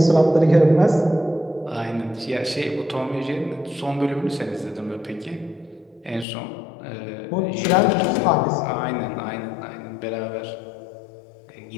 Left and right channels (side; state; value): right; drops out; at 6.2 s